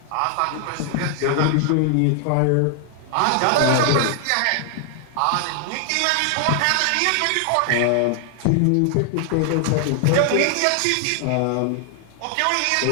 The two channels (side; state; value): both; different; correlation 0.00